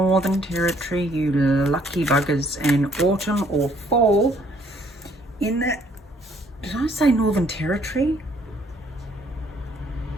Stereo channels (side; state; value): both; normal; correlation 0.64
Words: Territory, you lucky buggers, and autumn or fall in the... Did I say Northern Territory?